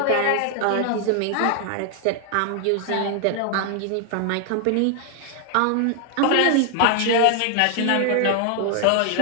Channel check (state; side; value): different; both; correlation 0.00